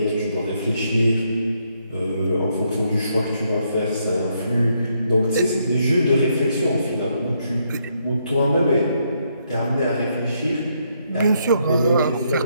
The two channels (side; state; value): both; inverted; correlation -0.75